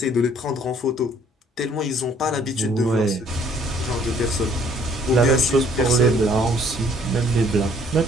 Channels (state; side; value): normal; both; correlation 0.60